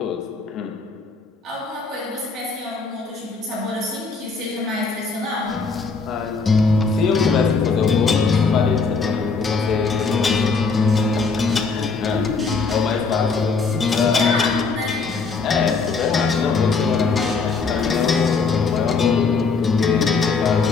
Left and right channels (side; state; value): right; quieter; 4.6 dB